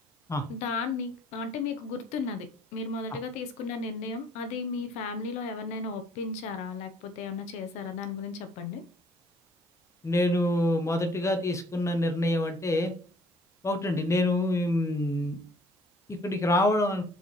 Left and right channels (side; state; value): both; normal; correlation 0.60